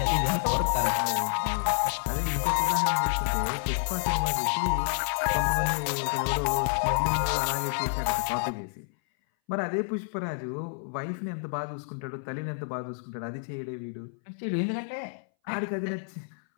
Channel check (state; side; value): silent; right; 59 dB below the other